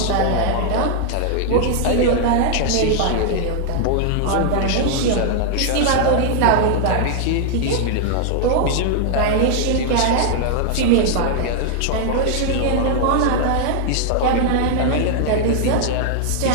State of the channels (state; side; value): different; both; correlation 0.00